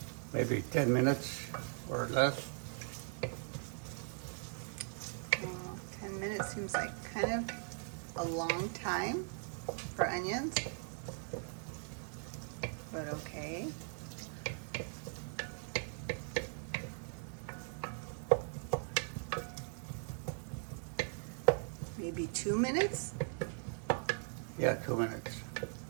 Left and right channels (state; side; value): silent; left; 51 dB below the other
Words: maybe 10 minutes or less. 10 minutes seems like kind of a long time for onions, but okay. Maybe 2 minutes? Yeah, 2 minutes.